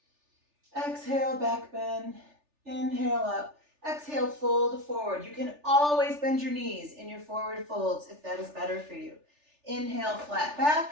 Exhale, back bend. Inhale up. Exhale, fold forward. You can always bend your knees in your forward folds if that is better for you. Inhale, flat back.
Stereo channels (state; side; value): late; left; 3.4 ms